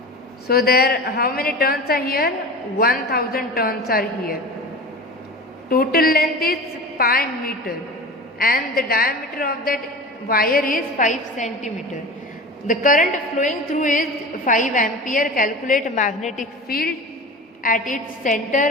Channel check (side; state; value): both; normal; correlation 0.32